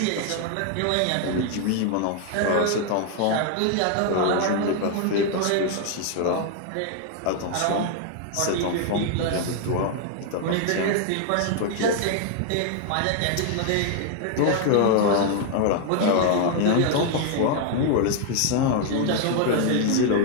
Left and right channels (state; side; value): different; both; correlation 0.00